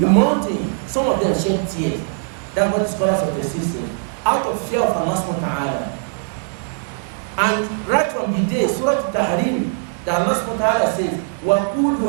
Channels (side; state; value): left; silent; digital silence